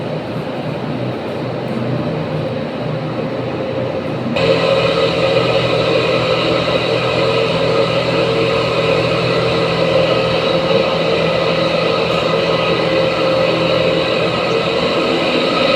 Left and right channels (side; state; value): both; identical; correlation 1.00